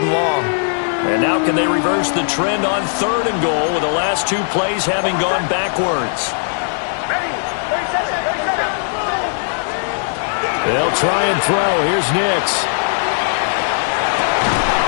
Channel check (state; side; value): silent; right; digital silence